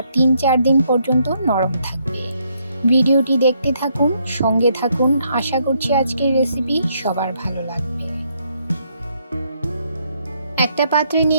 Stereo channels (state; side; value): inverted; both; correlation -0.73